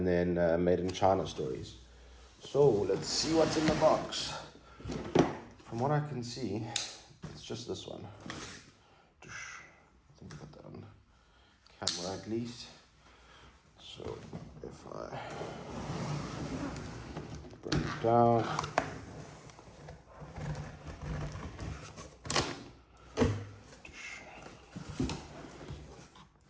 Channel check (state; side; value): identical; both; correlation 1.00